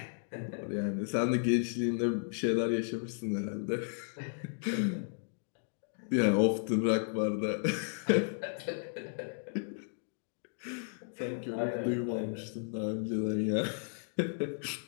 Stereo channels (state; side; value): silent; right; digital silence